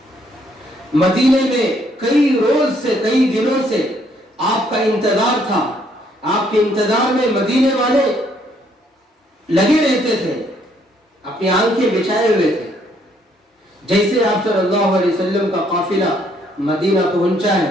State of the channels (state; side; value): normal; both; correlation 0.68